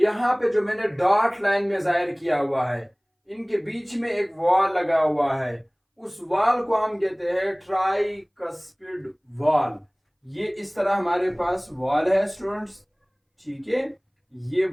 पे जो मैंने डॉट लाइन में जाहिर किया हुआ है, इनके बीच में एक वॉल लगा हुआ है, उस वॉल को हम कहते हैं ट्राइकस्पिड वॉल। ये इस तरह हमारे पास वॉल है स्टूडेंट्स। ठीक है, ये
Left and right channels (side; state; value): both; identical; correlation 1.00